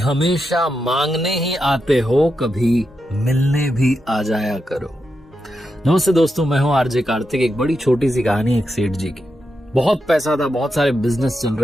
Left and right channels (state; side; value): normal; both; correlation 0.86